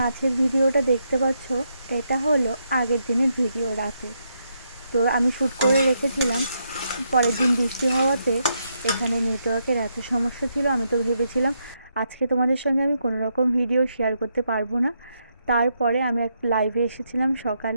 ভিডিওটা দেখতে পাচ্ছ, এটা হলো আগের দিনের ভিডিও রাতে। তো আমি শ্যুট করে রেখেছিলাম। পরের দিন বৃষ্টি হওয়াতে এখানে নেটওয়ার্কের এত সমস্যা ছিল, আমি তো ভেবেছিলাম আজকে তোমাদের সঙ্গে আমি কোনো রকম ভিডিও শেয়ার করতে পারবো না। তারপরে আমি এক লাইভে এসেছিলাম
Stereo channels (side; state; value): both; inverted; correlation -0.80